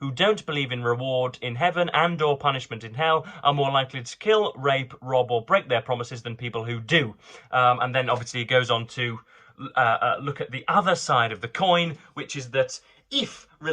who don't believe in reward in heaven and or punishment in hell are more likely to kill, rape, rob or break their promises than people who do. And then obviously he goes on to look at the other side of the coin, which is that if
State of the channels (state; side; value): identical; both; correlation 1.00